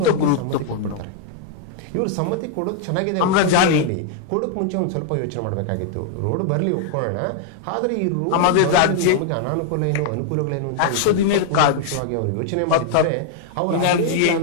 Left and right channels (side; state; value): both; different; correlation 0.00